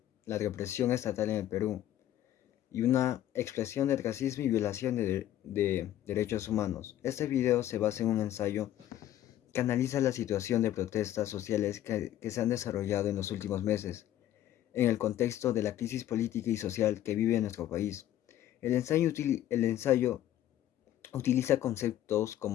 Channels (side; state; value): right; quieter; 12.4 dB